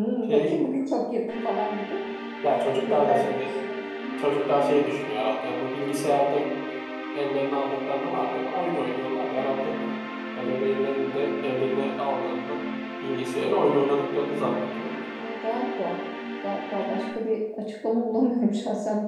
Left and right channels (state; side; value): identical; both; correlation 1.00